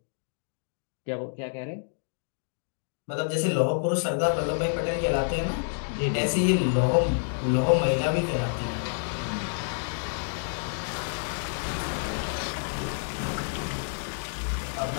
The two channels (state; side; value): silent; right; digital silence